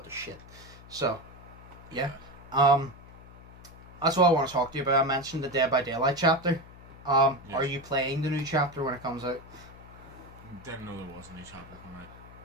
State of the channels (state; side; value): noise; left; hum, 19 dB below the sound